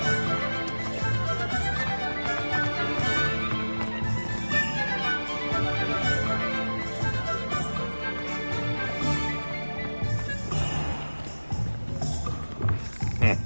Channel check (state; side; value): inverted; both; correlation -1.00